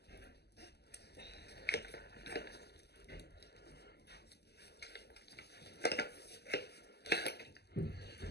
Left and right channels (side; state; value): right; late; 0.47 ms